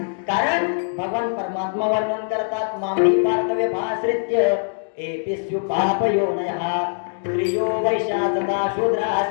कारण भगवान परमात्मा वर्णन करतात, मामी पार्थव्य भाश्रित्य एपिस्यु पापयोनयः, स्त्रियो वैशाचता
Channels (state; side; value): silent; right; digital silence